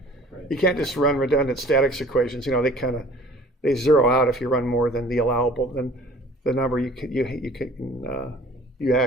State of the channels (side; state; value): both; normal; correlation 0.49